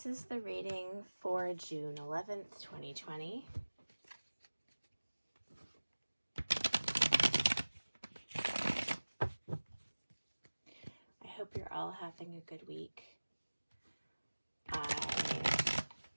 is the reading for June 11th, 2020. I hope you're all having a good week. I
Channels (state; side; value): inverted; both; correlation -1.00